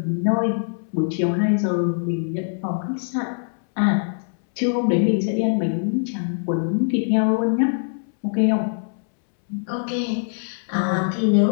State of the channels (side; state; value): right; silent; 64 dB below the other